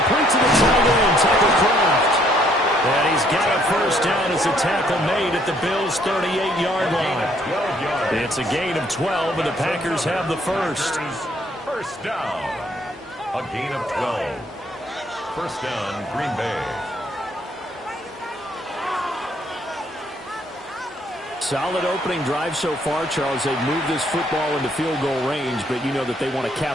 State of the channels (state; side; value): normal; both; correlation 0.66